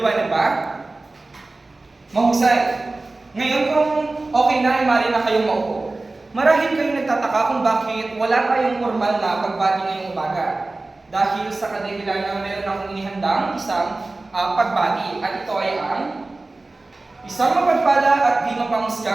ba? Mahusay. Ngayon kung okay na ay maaari na kayong maupo. Marahil kayo nagtataka kung bakit wala tayong formal na pagbati ngayong umaga. Dahil sa kadahilan na meron akong inihandang isang pagbati at ito ay ang isang mapagpala at di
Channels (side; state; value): left; quieter; 3.2 dB